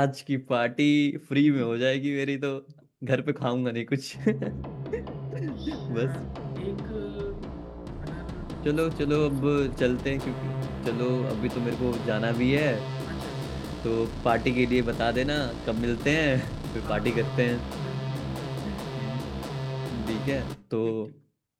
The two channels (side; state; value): both; identical; correlation 1.00